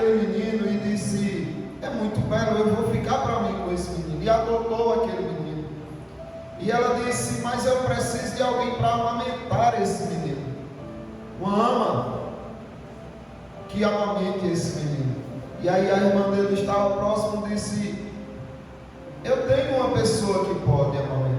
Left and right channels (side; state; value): both; identical; correlation 1.00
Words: menino e disse: é muito belo, eu vou ficar para mim com esse menino, e adotou aquele menino. E ela disse: mas eu preciso de alguém para amamentar esse menino, uma ama que amamente esse menino. E aí a irmã dele estava próximo e disse: eu tenho uma pessoa que pode